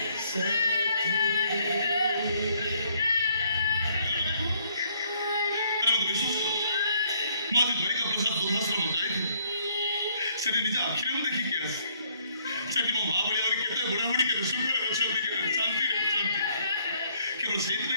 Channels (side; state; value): both; inverted; correlation -0.66